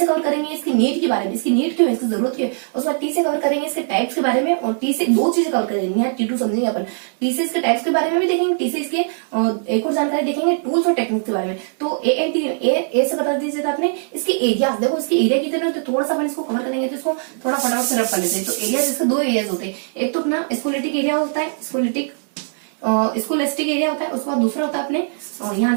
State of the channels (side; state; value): left; silent; digital silence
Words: कवर करेंगे इसकी नीड के बारे में, इसकी नीड क्यों है, इसकी जरूरत क्यों है। उसके बाद टी से कवर करेंगे इसके टाइप्स के बारे में, और टी से दो चीजें कवर करेंगे, यहाँ T2 समझेंगे अपन। टी से इसके टाइप्स के बारे में भी देखेंगे, टी से इसके एक और जानकारी देखेंगे टूल्स और टेक्निक्स के बारे में। तो ANT ए से बता दीजिए आपने इसके एरिया, देखो इसके एरिया कितने होते हैं, थोड़ा सा अपन इसको कवर करेंगे, तो इसको थोड़ा फटाफट से रफ कर लेते हैं। तो एरिया इसके दो एरियाज होते हैं, एक तो अपना स्कोलेस्टिक एरिया होता है, स्कोलेस्टिक एरिया होता है। उसके बाद दूसरा होता है अपने यहाँ